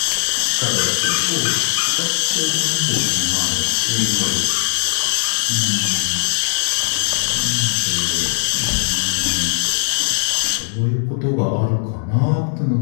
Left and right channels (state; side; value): silent; right; digital silence